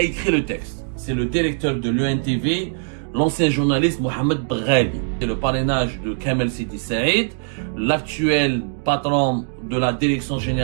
écrit le texte. C'est le directeur de l'ENTV, l'ancien journaliste Mohamed Belghali. C'est le parrainage de Kamel Sidi Saïd, l'actuel patron de la direction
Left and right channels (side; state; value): left; silent; 62 dB below the other